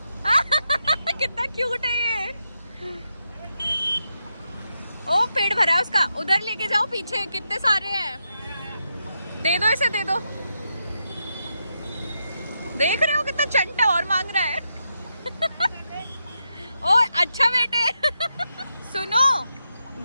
कितना क्यूट है ये। ओ पेट भरा है उसका, उधर लेके जाओ पीछे, कितने सारे हैं। दे दो इसे, दे दो। देख रहे हो कितना चंटा और मांग रहा है। ओ अच्छा बेटे। सुनो,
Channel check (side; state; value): both; inverted; correlation -0.84